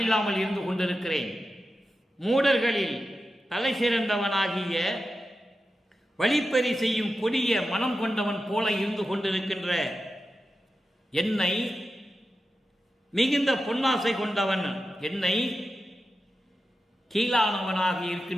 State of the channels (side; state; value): both; normal; correlation 0.91